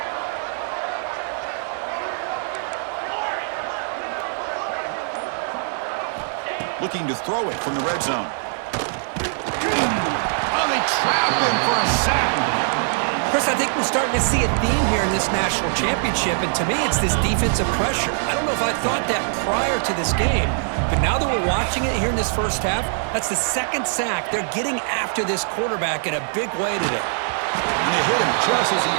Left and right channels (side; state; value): left; silent; 64 dB below the other